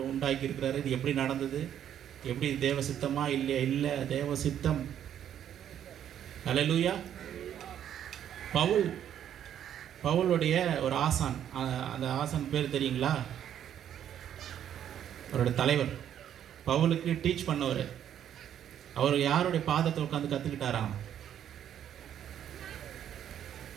உண்டாக்கி இருக்கிறாரு. இது எப்படி நடந்தது? எப்படி தேவ சித்தமா இல்லையா? இல்லை, தேவ சித்தம். அல்லேலூயா. பவுலுடைய ஒரு ஆசான், அந்த ஆசான் பேர் தெரியுங்களா? அவருடைய தலைவர் பவுலுக்கு டீச் பண்ணவர். அவர் யாருடைய பாதத்தை உட்காந்து கற்றுக்கிட்டாராம்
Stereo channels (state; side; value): quieter; left; 10.0 dB